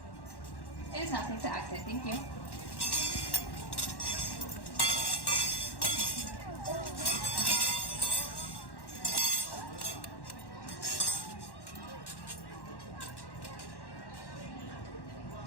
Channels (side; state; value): right; late; 1.1 ms